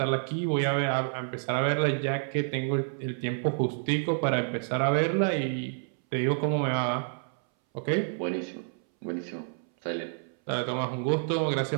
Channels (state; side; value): silent; left; 59 dB below the other